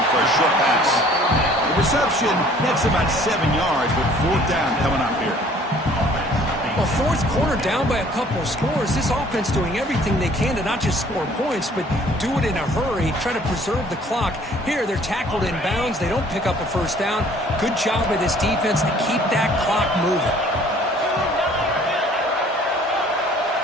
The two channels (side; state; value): both; normal; correlation 0.55